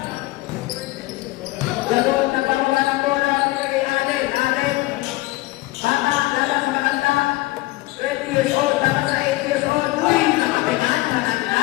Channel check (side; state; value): right; quieter; 19.5 dB